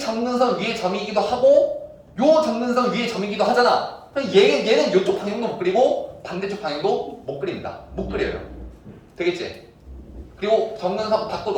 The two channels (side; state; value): both; identical; correlation 1.00